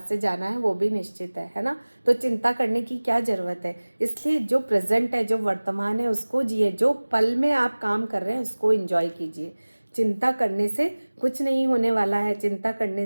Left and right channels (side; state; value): both; inverted; correlation -1.00